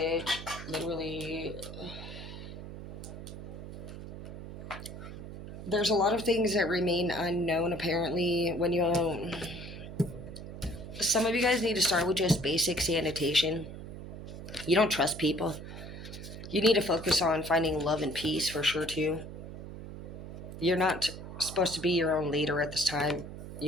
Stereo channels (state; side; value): noise; right; hum, 11 dB below the sound